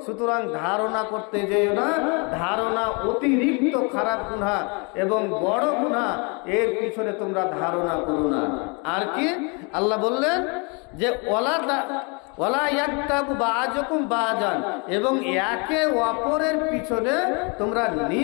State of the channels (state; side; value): quieter; right; 32.6 dB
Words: সুতরাং ধারণা করতে যেও না। ধারণা অতিরিক্ত খারাপ গুনাহ এবং বড় গুনাহ, এর পিছনে তোমরা ধারণা করো না। আর কি আল্লাহ বললেন যে ওয়ালা ইয়াগতাবু বাযুকুম বাযান, এবং একে অপরের পিছনে তোমরা